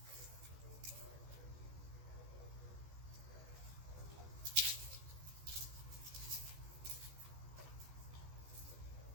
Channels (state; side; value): late; left; 14 ms